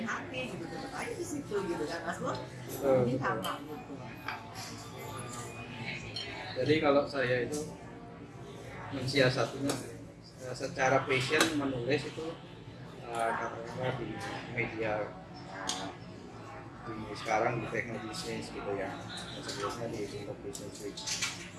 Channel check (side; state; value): both; identical; correlation 1.00